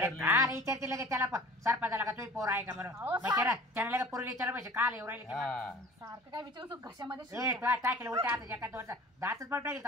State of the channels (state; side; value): normal; both; correlation 0.44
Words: विचारली. काल विचारते लगेच त्याला सरपंचाला का तुम्ही पोर आहे का म्हणून अहो, मग त्याला लगेच पोरीला विचारलं पाहिजे काल येऊ राहिले हा सारखं काय विचारू घशामध्ये ए शिरतं. तो टाकेल उलट्या हाताच्या एका दोनचा दातच पण टाकेल